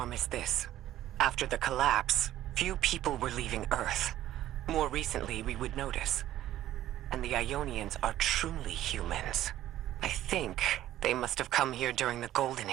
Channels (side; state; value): left; quieter; 13.3 dB